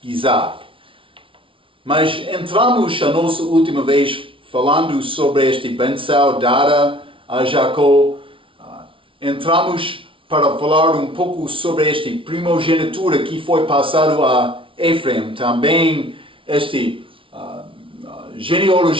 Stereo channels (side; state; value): left; late; 0.25 ms